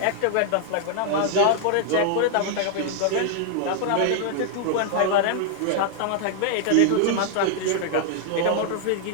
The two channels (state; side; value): different; both; correlation 0.00